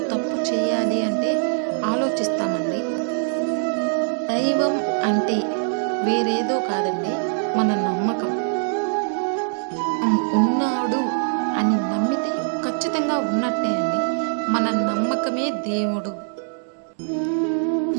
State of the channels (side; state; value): left; silent; 64 dB below the other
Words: తప్పు చేయాలి అంటే ఆలోచిస్తామండి. దైవం అంటే వేరేదో కాదండి, మన నమ్మకం. ఉన్నాడు అని నమ్మితే ఖచ్చితంగా ఉన్నట్టే అండి. మన నమ్మకమే దేవుడు.